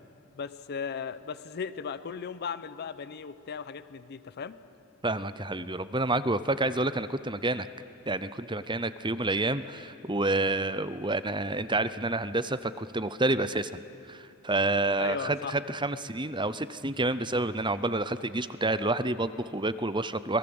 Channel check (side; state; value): both; normal; correlation 0.30